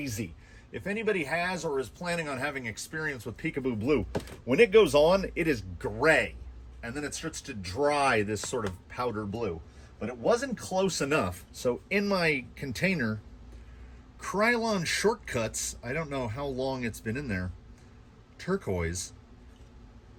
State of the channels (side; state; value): both; identical; correlation 1.00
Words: If anybody has or is planning on having experience with Peekaboo Blue, when it goes on, it is gray. And then it starts to dry this sort of powder blue. But it wasn't close enough. So in my container, Krylon Shortcuts, I don't know how long it's been in there, turquoise.